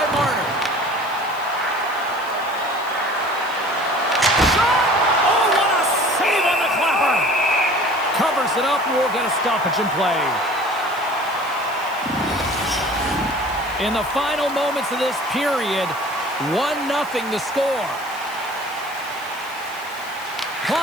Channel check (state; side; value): noise; right; hiss, 21 dB below the sound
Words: Marner. Shot! Oh, what a save on the clapper! Covers it up, and we'll get a stoppage in play. In the final moments of this period, 1-0 the score.